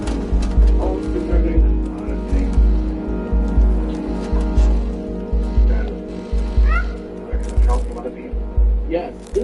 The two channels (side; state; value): both; identical; correlation 1.00